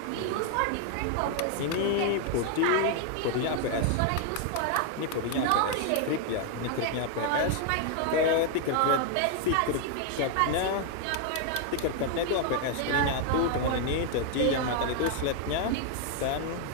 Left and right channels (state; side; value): different; both; correlation 0.00